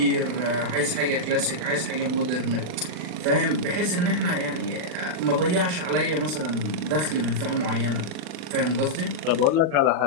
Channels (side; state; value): left; late; 39 ms